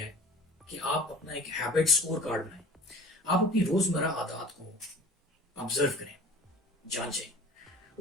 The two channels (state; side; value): normal; both; correlation 0.44